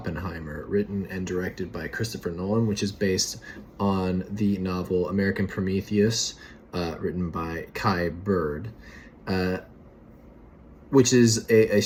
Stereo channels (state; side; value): identical; both; correlation 1.00